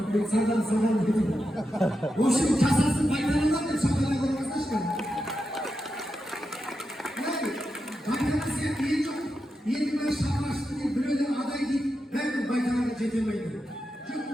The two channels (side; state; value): both; normal; correlation 0.88